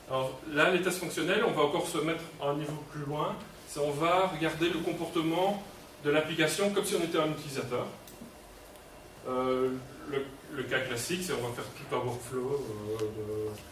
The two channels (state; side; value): identical; both; correlation 1.00